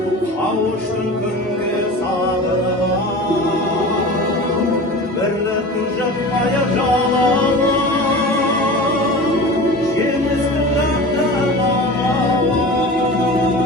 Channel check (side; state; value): both; normal; correlation 0.34